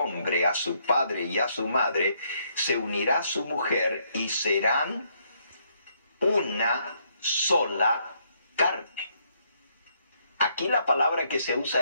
a su padre y a su madre, se unirá a su mujer y serán una sola carne. Aquí la palabra que se usa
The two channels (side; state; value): both; inverted; correlation -0.72